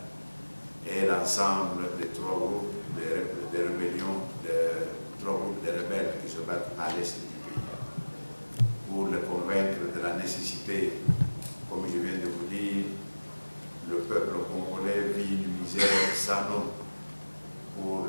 et l'ensemble des 3 groupes de rébellions, de 3 groupes de rebelles qui se battent à l'est du pays, pour les convaincre de la nécessité, comme je viens de vous dire, le peuple congolais vit une misère sans nom, pour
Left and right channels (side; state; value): both; inverted; correlation -1.00